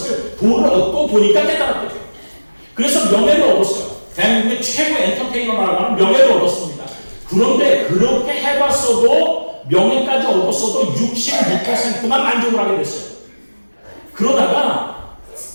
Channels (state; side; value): inverted; both; correlation -1.00